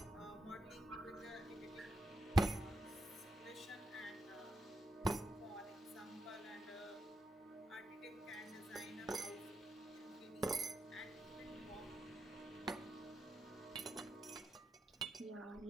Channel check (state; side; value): normal; both; correlation 0.84